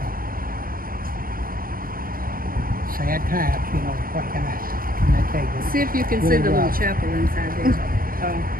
sad times, what can I tell you? See if you can see Really the little rough. chapel inside there.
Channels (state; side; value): late; left; 0.42 ms